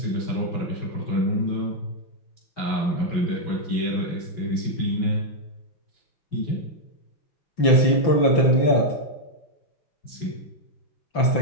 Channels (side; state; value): right; late; 5.9 ms